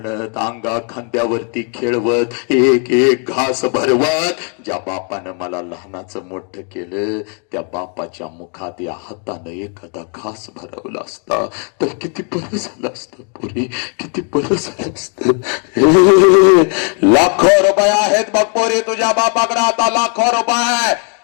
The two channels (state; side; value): quieter; right; 38.9 dB